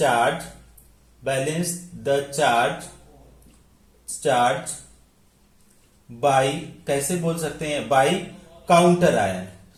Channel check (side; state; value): both; identical; correlation 1.00